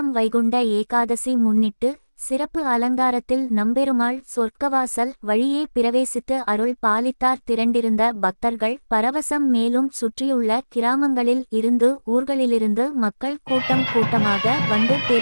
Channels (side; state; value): both; inverted; correlation -1.00